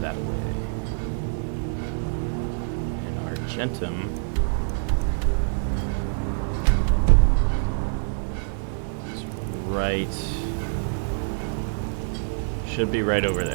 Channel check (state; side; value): silent; left; 57 dB below the other